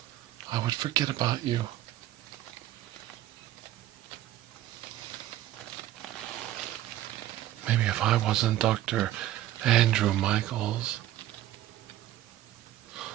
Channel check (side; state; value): left; quieter; 13.7 dB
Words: I would forget about you. Maybe if I wasn't Dr. Andrew Michaels,